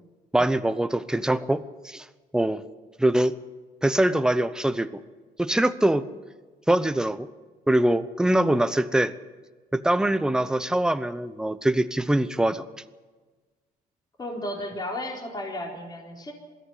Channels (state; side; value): normal; both; correlation 0.94